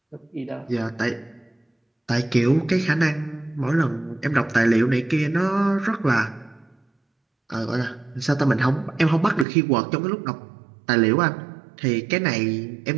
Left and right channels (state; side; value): drops out; left; at 9.5 s